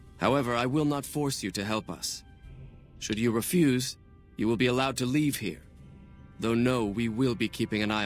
However, I will not force you to help us. Should you refuse, you will be allowed to leave here. Though no, we will be keeping an eye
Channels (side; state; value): both; identical; correlation 1.00